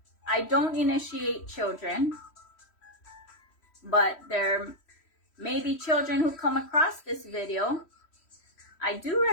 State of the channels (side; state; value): right; late; 3.1 ms